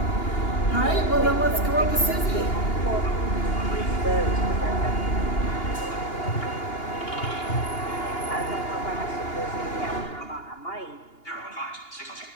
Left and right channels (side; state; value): right; late; 2.8 ms